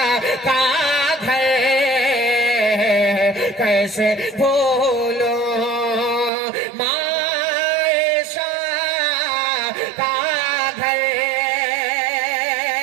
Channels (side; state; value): left; drops out; at 6.3 s